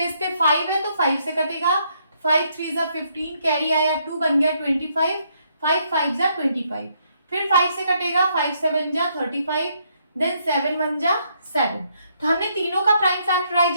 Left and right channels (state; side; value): inverted; both; correlation -0.73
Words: पे 5 है तो 5 से कटेगा, 5 3 जा 15, कैरी आया 2, बन गया 25, 5 5 जा 25, फिर 5 से कटेगा, 5 7 जा 35, देन 7 1 जा 7। तो हमने तीनों का प्राइम